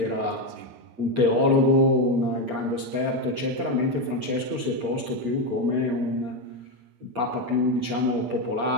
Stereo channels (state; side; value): late; left; 8.4 ms